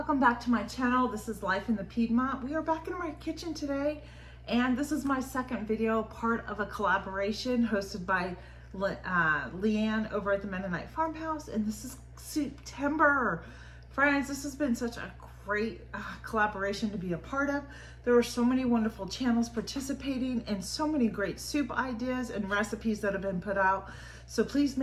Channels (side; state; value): both; identical; correlation 1.00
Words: back to my channel. This is Life in the Piedmont. We are back in my kitchen today, and this is my second video, part of a collaboration hosted by Leanne over at the Mennonite Farmhouse, and this is September. Friends, this has been such a great collaboration to be a part of. There were so many wonderful channels participating and so many great soup ideas and recipes that have been put out. So please